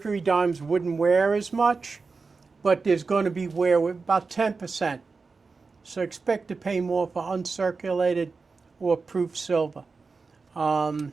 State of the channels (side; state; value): left; quieter; 4.4 dB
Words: dimes wouldn't wear as much, but there's going to be wear with about 10%. So expect to pay more for uncirculated or proof silver.